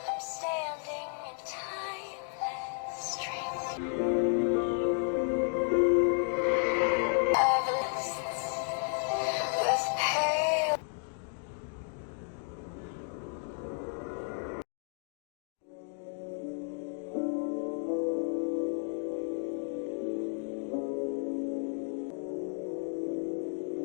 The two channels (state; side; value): silent; right; 56 dB below the other